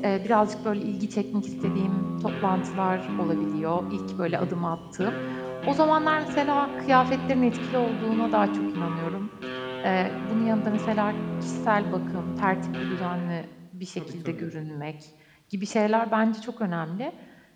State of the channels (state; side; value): identical; both; correlation 1.00